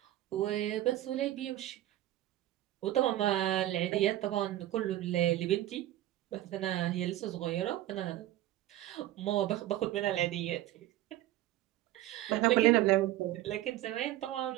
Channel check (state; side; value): quieter; left; 14.6 dB